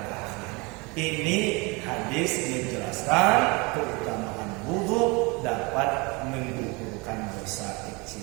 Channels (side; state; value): left; quieter; 27.4 dB